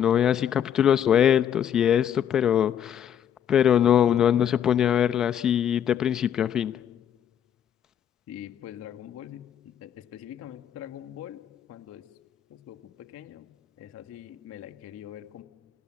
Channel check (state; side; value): quieter; right; 9.4 dB